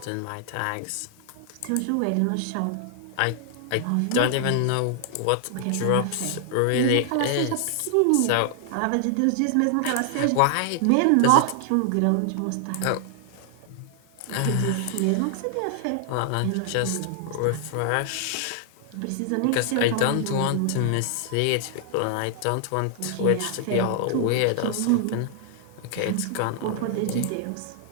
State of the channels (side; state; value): both; different; correlation 0.00